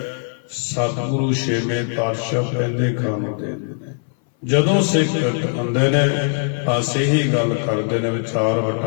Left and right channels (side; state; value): right; silent; 61 dB below the other